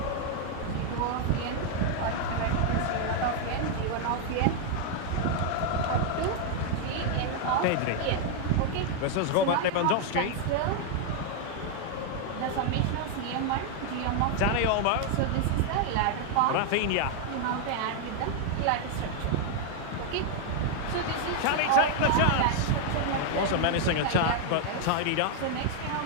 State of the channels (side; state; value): both; different; correlation 0.00